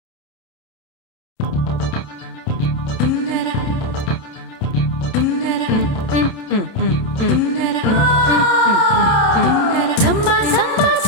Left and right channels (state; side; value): late; right; 29 ms